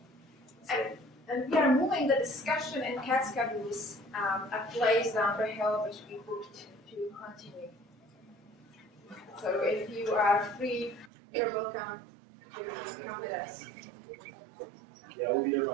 that. And we are moving the discussion in cat schedules a place down the hill which we booked to continue. So if you are free, you're welcome to come with us. Yeah, we'll be there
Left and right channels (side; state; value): left; drops out; at 11.1 s